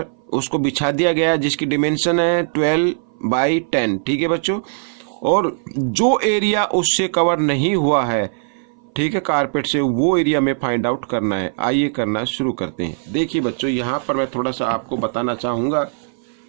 उसको बिछा दिया गया है जिसकी डिमेंशन है 12 बाई 10। ठीक है बच्चों, और जो एरिया उससे कवर नहीं हुआ है, ठीक है, कारपेट से, वो एरिया में फाइंड आउट करना है। आइए करना शुरू करते हैं। देखिए बच्चों यहाँ पर मैं थोड़ा सा आपको बताना चाहूँगा,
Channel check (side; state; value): left; silent; 58 dB below the other